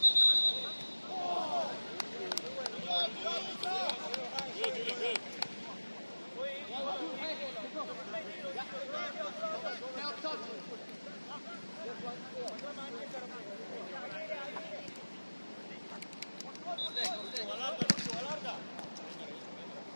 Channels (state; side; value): inverted; both; correlation -1.00